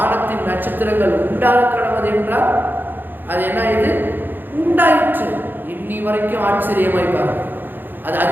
நட்சத்திரங்கள் உண்டாக கடவுது என்றால் அது என்ன, இது உண்டாயிற்று. இன்னி வரைக்கும் ஆச்சரியமாய் பாருங்க, அது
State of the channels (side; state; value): left; late; 0.093 ms